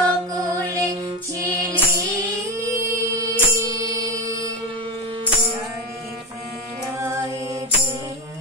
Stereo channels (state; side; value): normal; both; correlation 0.18